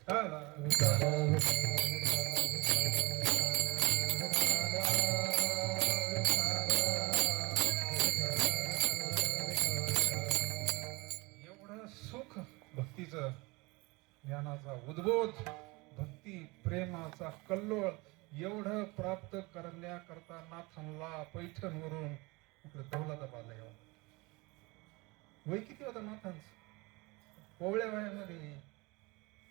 एवढं सुख भक्तीचं, ज्ञानाचा उद्बोध, भक्ती प्रेमाचा कल्लोळ एवढं प्राप्त करण्याकरता नाथांना पैठणवरून इकडे दौलताबादला यावं. वय किती होतं नाथांचं? कोवळ्या वयामध्ये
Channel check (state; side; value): quieter; left; 25.0 dB